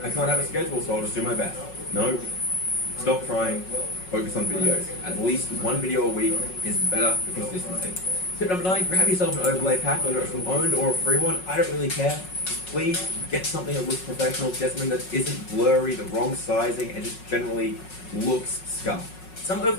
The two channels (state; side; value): late; right; 5.4 ms